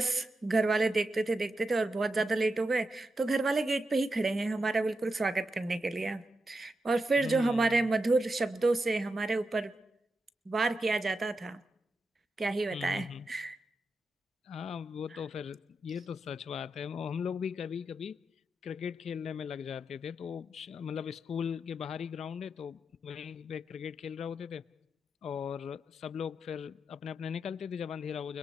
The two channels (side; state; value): both; normal; correlation 0.87